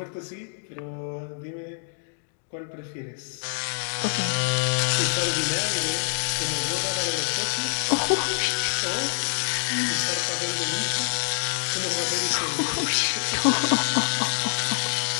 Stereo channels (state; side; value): silent; right; 61 dB below the other